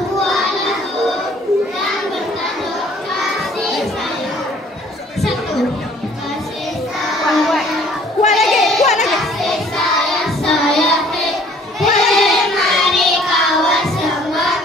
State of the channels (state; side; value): normal; both; correlation 0.57